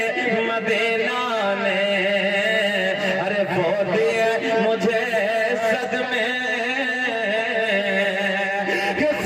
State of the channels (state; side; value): identical; both; correlation 1.00